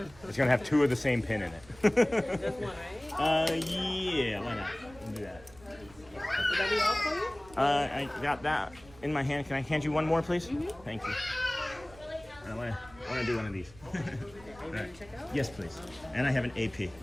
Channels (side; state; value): right; noise; rumble, 22 dB below the sound